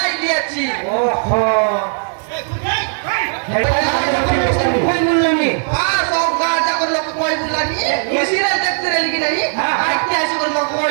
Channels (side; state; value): left; silent; 68 dB below the other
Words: দিয়েছি ওহো কই বললানি আ সব গাজা করে লোক কই বুললা নি মিছিরা দেখতে রেলি কি নাই হ্যাঁ। আইতে আসি করে মক